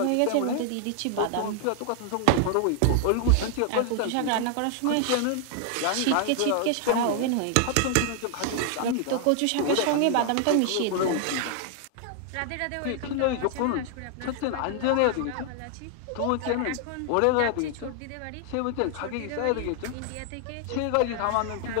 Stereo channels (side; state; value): both; different; correlation 0.00